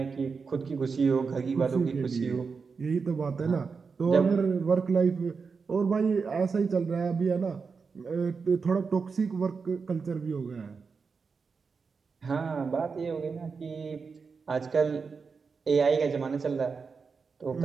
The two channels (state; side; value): quieter; left; 5.1 dB